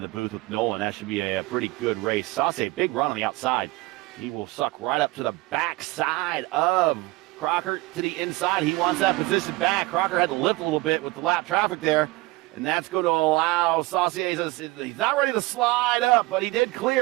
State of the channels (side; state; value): left; quieter; 21.2 dB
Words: the booth with Nolan. That should be a pretty good race. Saucier, big run on the outside. He will suck right up to the backside of Crocker to the inside. He wants that position back. Crocker had to lift a little bit with the lap traffic there, and that's going to allow Saucier. He's not ready to slide up, but he did